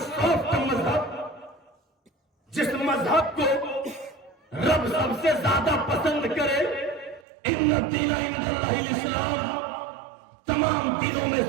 سافٹ مذہب، جس مذہب کو رب سب سے زیادہ پسند کرے، ان الدین عند اللہ الاسلام، تمام دینوں میں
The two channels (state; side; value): drops out; left; at 7.2 s